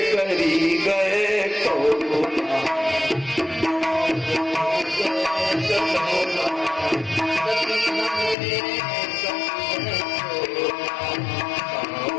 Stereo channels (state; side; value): drops out; right; at 8.3 s